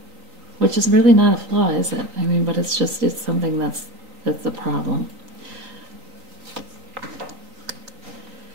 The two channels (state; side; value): late; left; 3.9 ms